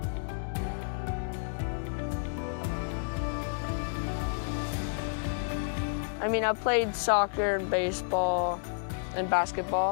I mean, I played soccer and baseball and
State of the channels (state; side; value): silent; right; digital silence